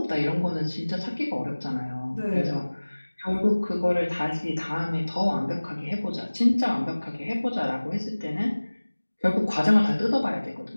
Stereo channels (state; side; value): inverted; both; correlation -1.00